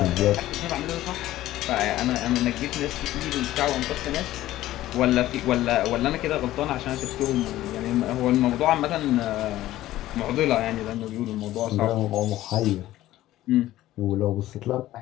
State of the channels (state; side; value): quieter; right; 14.9 dB